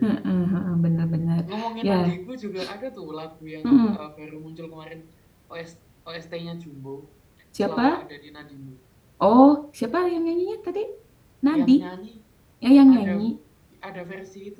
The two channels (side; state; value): both; identical; correlation 1.00